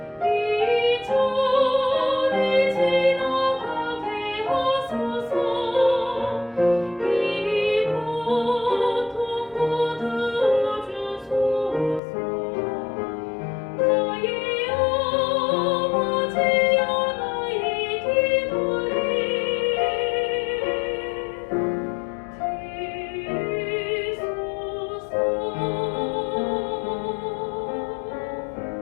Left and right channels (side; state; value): right; drops out; at 12.0 s